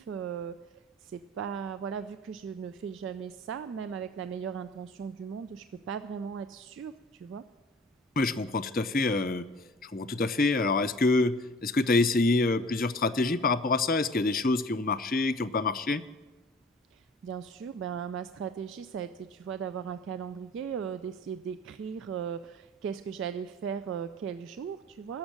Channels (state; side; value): normal; both; correlation 0.46